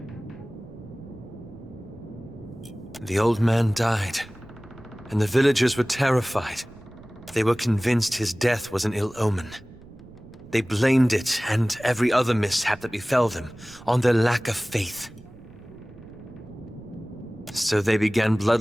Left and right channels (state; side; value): noise; right; rumble, 22 dB below the sound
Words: The old man died, and the villagers were terrified. They were convinced his death was an ill omen. They blamed it, and every other mishap that befell them, on their lack of faith. So they began